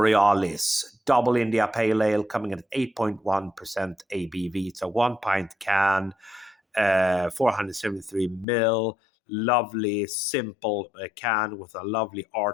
Double India Pale Ale coming at 8.1% ABV. It's a 1 pint can, 473 ml. Lovely, simple can with a lovely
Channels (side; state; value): right; drops out; at 8.5 s